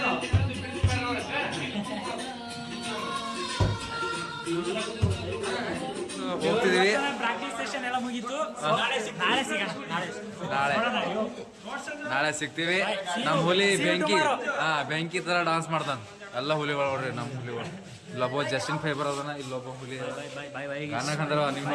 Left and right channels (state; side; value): identical; both; correlation 1.00